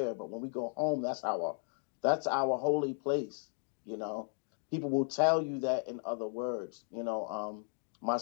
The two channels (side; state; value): right; silent; 54 dB below the other